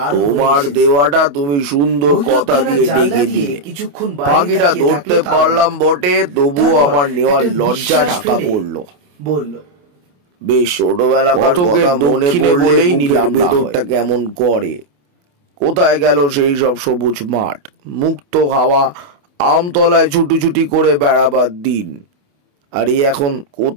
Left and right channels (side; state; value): left; late; 28 ms